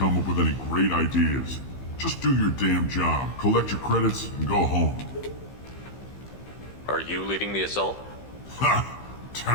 up with any great ideas. Just do your damn job, collect your credits, and go home. Are you leading the assault? Ha!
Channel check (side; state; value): right; late; 15 ms